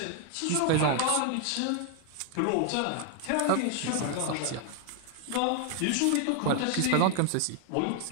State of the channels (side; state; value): both; different; correlation 0.00